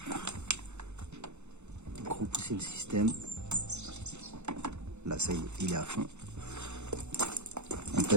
Repousser le système. Là, ça y est, il est à fond. On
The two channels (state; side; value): late; left; 0.82 ms